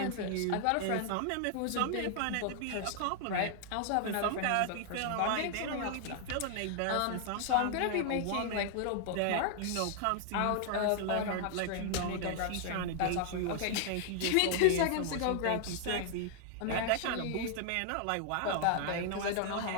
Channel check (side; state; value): both; different; correlation 0.00